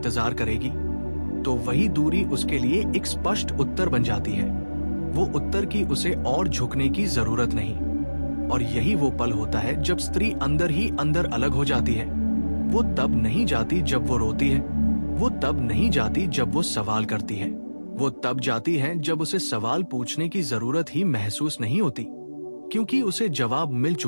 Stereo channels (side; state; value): both; inverted; correlation -1.00